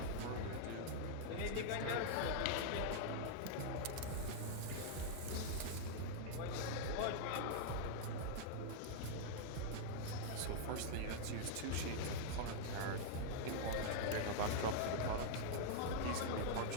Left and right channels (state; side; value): different; both; correlation -0.01